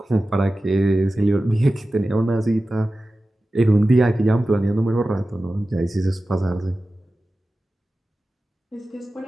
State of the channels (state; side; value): normal; both; correlation 0.95